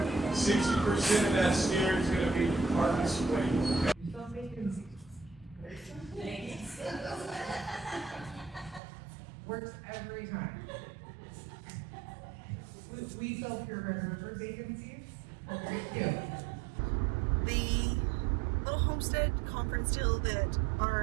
of that steer is going to be harvest weight. Works every time. We sell pure burger for vacancies. The little homestead conference deal that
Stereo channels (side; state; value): left; drops out; at 8.8 s